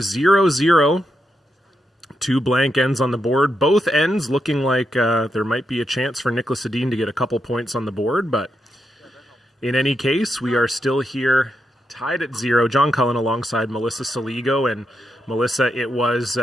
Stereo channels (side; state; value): both; normal; correlation 0.84